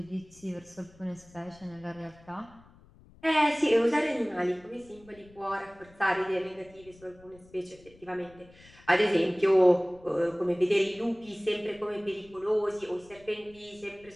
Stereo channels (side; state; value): left; noise; rumble, 25 dB below the sound